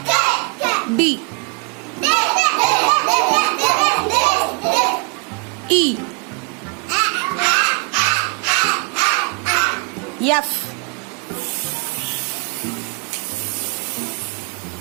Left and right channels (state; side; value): quieter; left; 33.0 dB